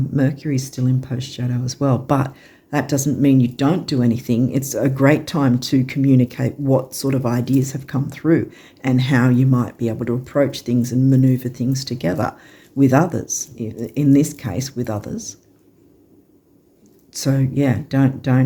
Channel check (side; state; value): both; identical; correlation 1.00